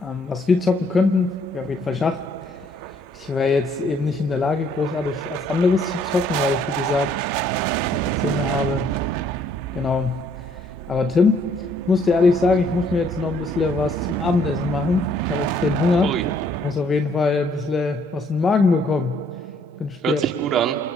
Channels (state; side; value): normal; both; correlation 0.65